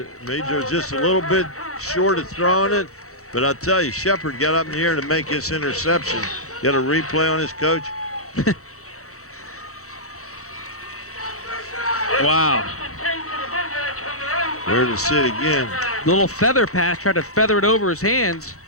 was just a little bit short of throwing it. But I'll tell you, Shepard got up in the air to make his interception. Got a replay on his coach. Wow. Where to sit again. Little feather pass, tried to feather it over his hands.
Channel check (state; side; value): late; right; 0.64 ms